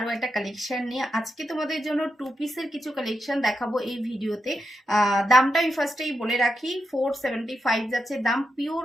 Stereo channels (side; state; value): both; normal; correlation 0.86